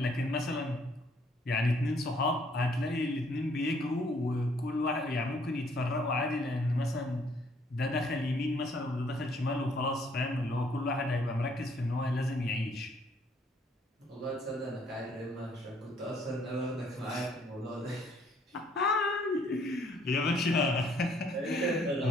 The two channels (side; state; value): both; normal; correlation 0.64